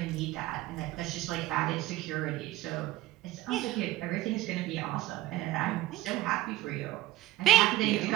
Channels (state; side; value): quieter; left; 16.2 dB